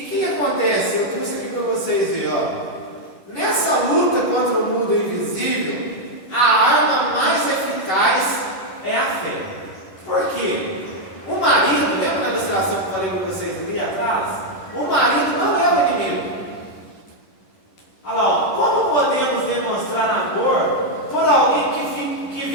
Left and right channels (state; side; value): late; right; 11 ms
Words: o que acontece? Eu trouxe aqui para vocês verem, ó. Nessa luta com